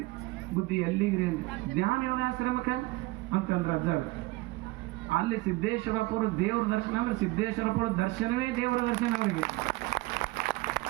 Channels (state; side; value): quieter; left; 20.9 dB